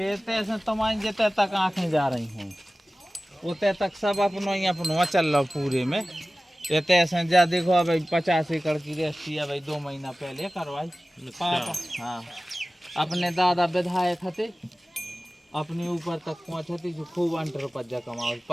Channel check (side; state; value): both; normal; correlation 0.97